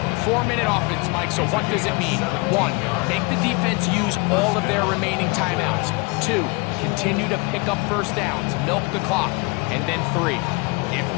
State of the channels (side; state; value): right; quieter; 27.9 dB